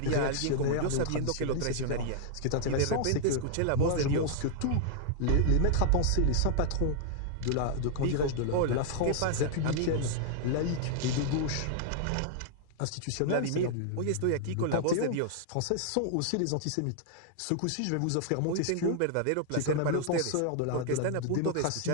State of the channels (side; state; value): both; different; correlation -0.01